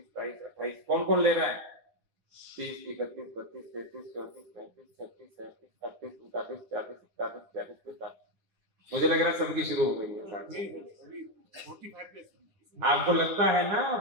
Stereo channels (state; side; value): late; left; 9.7 ms